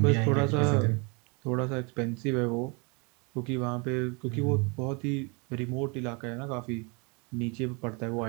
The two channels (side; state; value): left; quieter; 31.8 dB